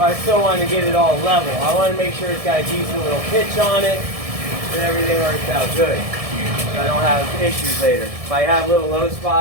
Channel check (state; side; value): late; left; 1.7 ms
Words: I still want to get it all level. I want to make sure it's got a decent little pitch on it and everything works out good. So I don't have issues later. If I have little low